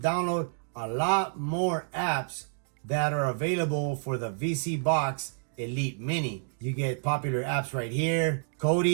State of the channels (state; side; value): silent; left; digital silence